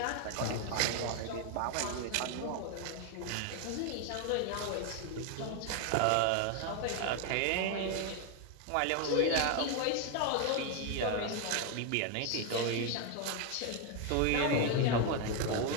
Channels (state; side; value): different; both; correlation 0.01